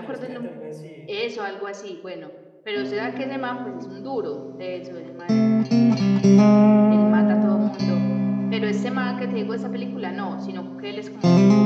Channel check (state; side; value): identical; both; correlation 1.00